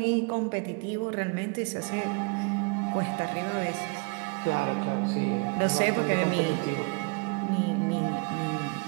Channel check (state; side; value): quieter; left; 31.3 dB